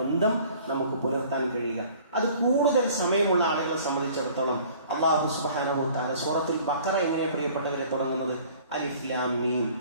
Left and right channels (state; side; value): inverted; both; correlation -0.51